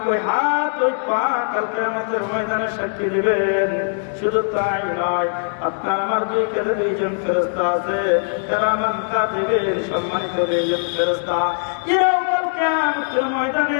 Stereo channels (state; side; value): silent; right; 65 dB below the other